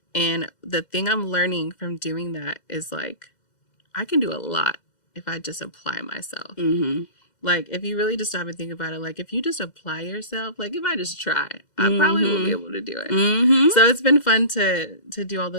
And the thing I'm learning from doing that is like, I can do a lot if I just apply myself. Mm-hmm. Like, if you really just stop and think about it, like, if you just apply yourself, like, if I just try, I probably will be able to do it. Mm-hmm. So it's been fun to do all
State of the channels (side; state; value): right; late; 2.1 ms